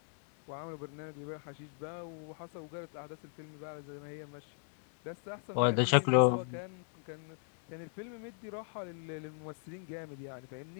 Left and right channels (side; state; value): right; silent; digital silence